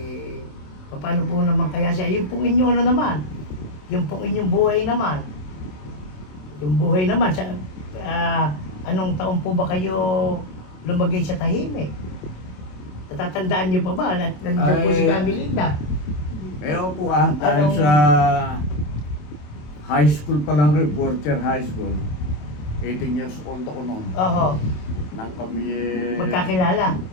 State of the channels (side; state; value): right; late; 27 ms